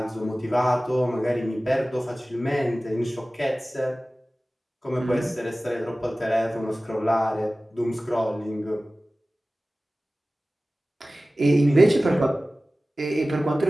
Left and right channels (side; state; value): both; normal; correlation 0.97